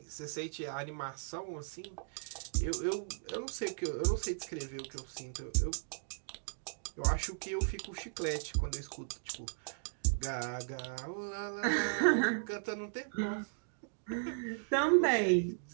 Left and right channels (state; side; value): silent; left; digital silence